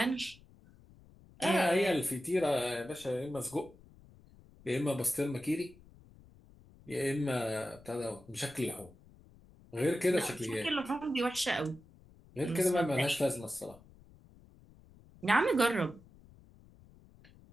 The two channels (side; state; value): left; noise; rumble, 24 dB below the sound